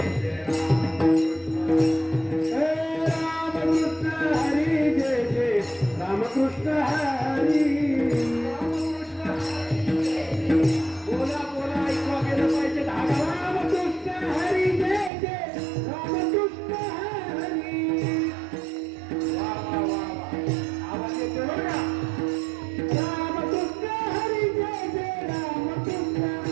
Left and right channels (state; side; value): drops out; left; at 15.1 s